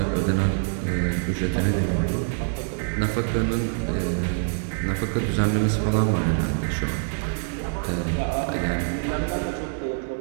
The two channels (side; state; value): left; silent; 62 dB below the other